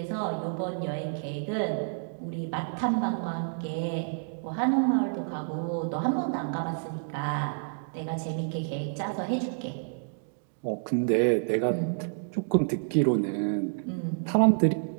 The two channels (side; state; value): left; silent; digital silence